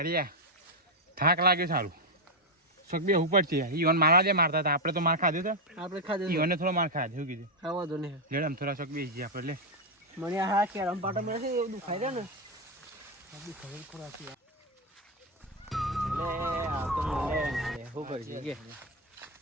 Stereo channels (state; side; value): normal; both; correlation 0.03